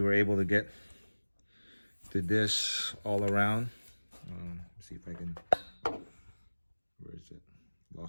were able to get to this all around. See if I can, where is it?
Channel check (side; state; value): both; inverted; correlation -1.00